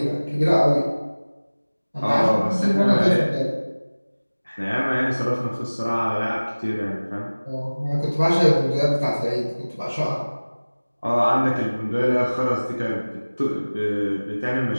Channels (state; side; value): inverted; both; correlation -1.00